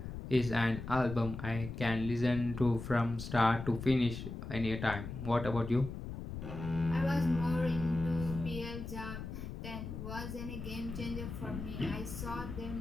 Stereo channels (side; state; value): left; noise; rumble, 8 dB below the sound